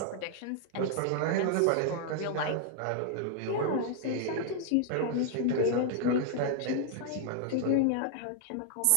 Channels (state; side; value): different; both; correlation -0.01